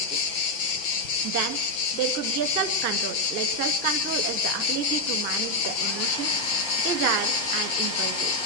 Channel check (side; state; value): right; late; 6.1 ms